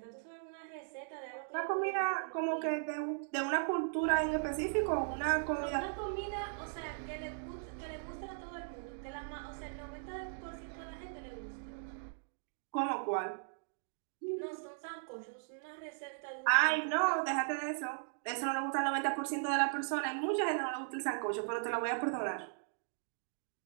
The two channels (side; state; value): left; silent; digital silence